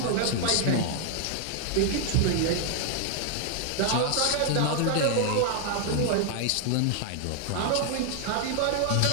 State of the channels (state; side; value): different; both; correlation 0.00